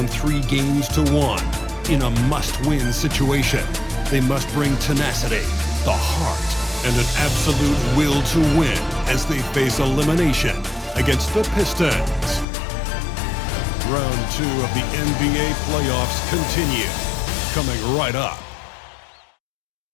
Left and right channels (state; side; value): drops out; right; at 12.5 s